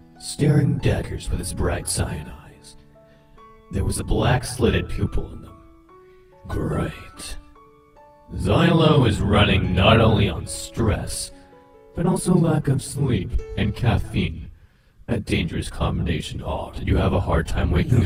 staring daggers with his bright cyan eyes. There was a black slitted pupil in them. Great. Zielo is running not only on stress, but also lack of sleep and caffeine. A dangerous combination. Oh, did you have a hard time waking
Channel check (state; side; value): identical; both; correlation 1.00